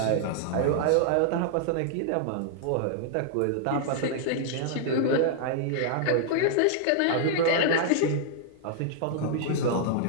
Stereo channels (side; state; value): both; different; correlation -0.01